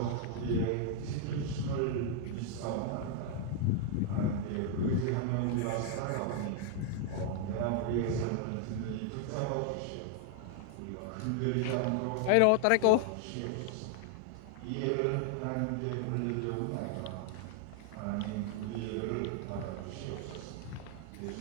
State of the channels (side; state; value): both; different; correlation 0.00